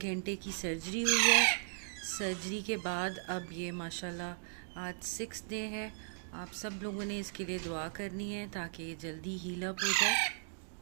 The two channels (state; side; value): silent; left; digital silence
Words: घंटे की सर्जरी हुई है। सर्जरी के बाद अब ये माशाल्लाह आज 6 डे है। आप सब लोगों ने इसके लिए दुआ करनी है ताकि ये जल्दी हील अप हो जाए।